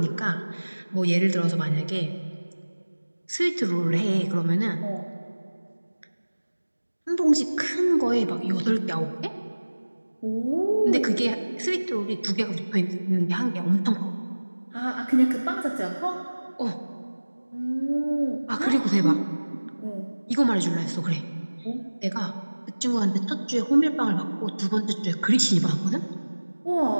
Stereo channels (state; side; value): inverted; both; correlation -1.00